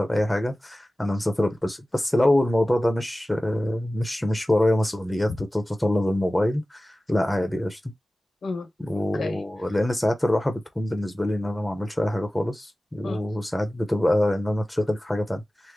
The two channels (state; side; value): normal; both; correlation 0.96